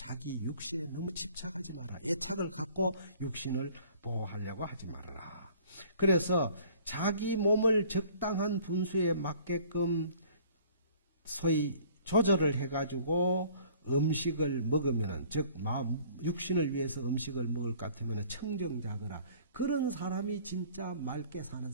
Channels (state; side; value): inverted; both; correlation -0.53